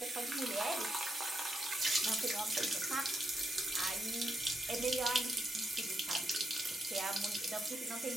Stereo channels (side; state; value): both; normal; correlation 0.82